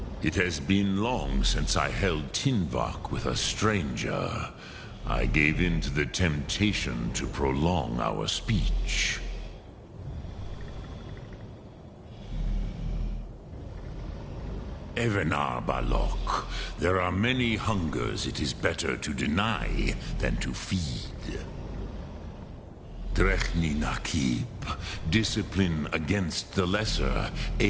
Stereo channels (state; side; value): identical; both; correlation 1.00